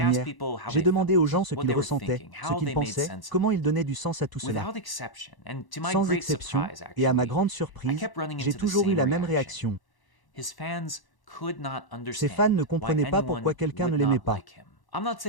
j'ai demandé aux gens ce qu'ils ressentaient, ce qu'ils pensaient, comment ils donnaient du sens à tout cela. Sans exception, et à ma grande surprise, j'ai toujours eu la même réaction. Ses fans ne comprenaient pas pourquoi quelqu'un ne l'aimait pas.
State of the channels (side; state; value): right; late; 1.1 ms